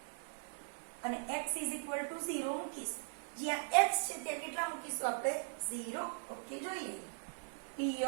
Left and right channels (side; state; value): left; silent; digital silence